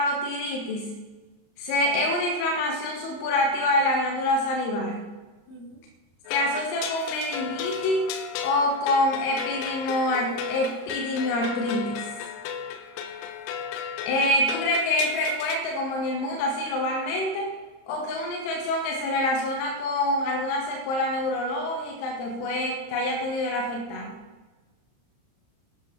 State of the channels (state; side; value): late; right; 34 ms